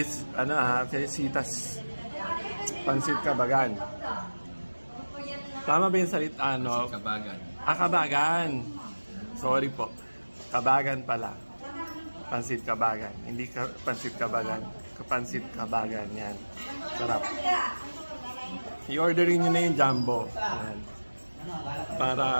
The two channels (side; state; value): both; inverted; correlation -1.00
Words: Pansit Kabagan. Tama ba yung salita? Kabagan. Kabagan. Sorry po. Kabagan pala. Pansit Kabagan. Hindi Pansit Kabagan. Pansit Kabagan. Yan. Sarap. I-orderin nyo na yung jumbo. Yan.